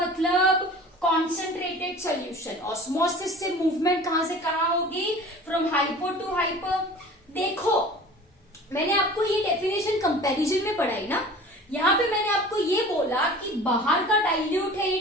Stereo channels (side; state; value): both; normal; correlation 0.42